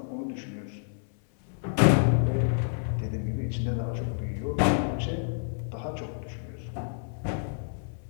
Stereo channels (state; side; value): silent; right; 59 dB below the other